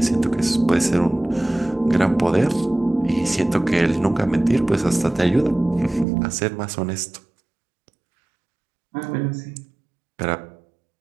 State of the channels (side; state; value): left; drops out; at 6.1 s